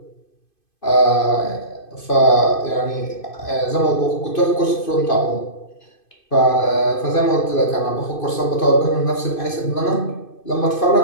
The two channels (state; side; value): late; right; 2.5 ms